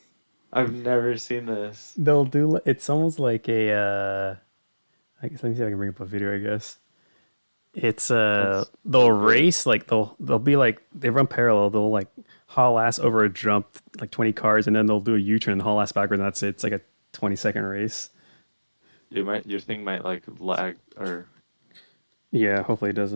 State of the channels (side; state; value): both; inverted; correlation -1.00